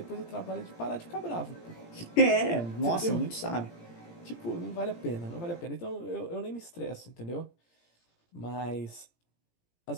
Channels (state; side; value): late; right; 17 ms